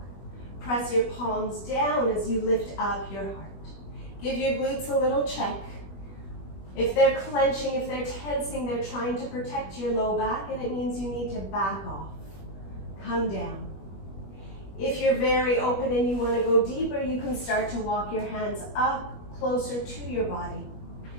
Press your palms down as you lift up your heart. Give your glutes a little check. If they're clenching, if they're tensing, they're trying to protect your low back, and it means you need to back off. Come down. If you're very open and you want to go deeper, you can start to walk your hands up closer to your body.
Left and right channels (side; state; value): right; late; 21 ms